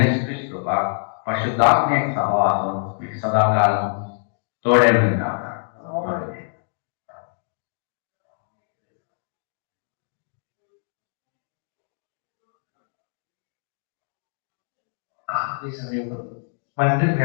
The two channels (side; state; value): right; silent; digital silence